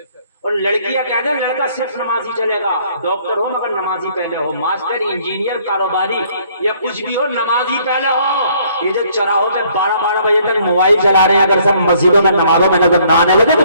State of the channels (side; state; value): both; inverted; correlation -0.63